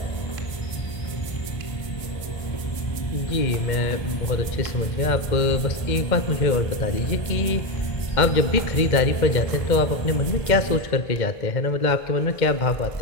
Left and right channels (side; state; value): right; late; 1.3 ms